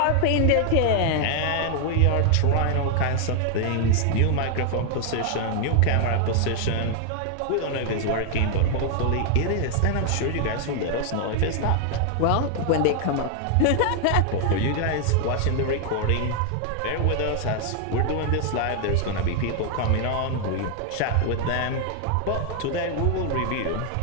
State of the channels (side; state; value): both; different; correlation 0.00